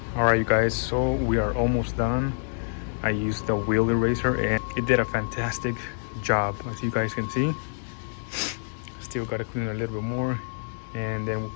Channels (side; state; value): right; silent; 60 dB below the other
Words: Alright you guys, so we are almost done. I used the wheel eraser and it did a fantastic job, as you guys can see. Still gotta clean it a little bit more, and then we'll